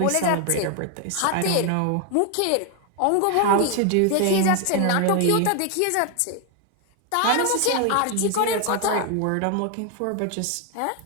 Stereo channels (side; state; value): both; different; correlation 0.01